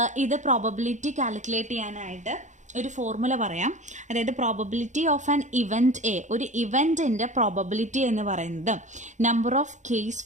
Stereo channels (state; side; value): late; left; 0.35 ms